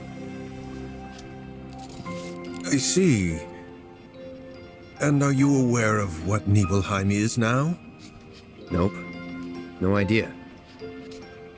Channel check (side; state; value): both; identical; correlation 1.00